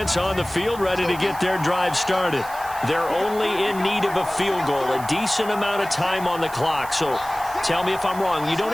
on the field, ready to get their drive started. They're only in need of a field goal, a decent amount of time on the clock. So tell me if I'm wrong. You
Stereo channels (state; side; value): noise; right; hiss, 17 dB below the sound